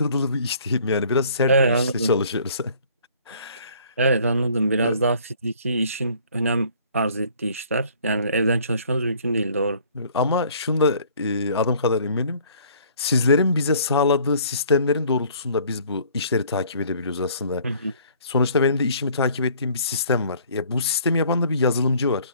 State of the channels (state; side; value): inverted; both; correlation -0.56